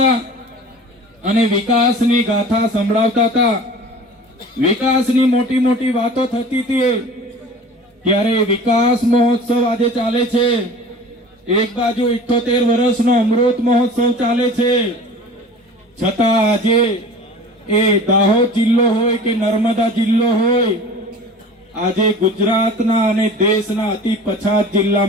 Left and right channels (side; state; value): both; normal; correlation 0.41